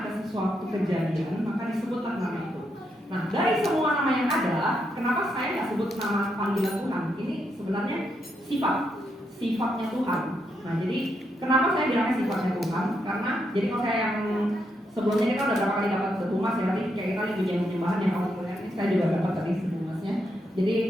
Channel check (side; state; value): both; normal; correlation 0.80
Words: ada sesuatu kejadian, maka disebutlah nama itu. Nah, dari semua nama yang ada, kenapa saya nggak sebut nama panggilan Tuhan? Ini sebenarnya sifatnya Tuhan. Nah, jadi kenapa saya bilangnya sifatnya Tuhan? Karena jadi kalau saya yang sebelumnya ini kan udah berapa kali dapat sebumas ya, tadi kayak kita pujian penyembahan yang kamu kuliah ini saya juga dapat tadi sebumasnya. Jadi